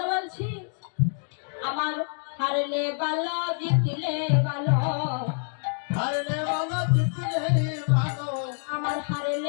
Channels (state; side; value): silent; right; 59 dB below the other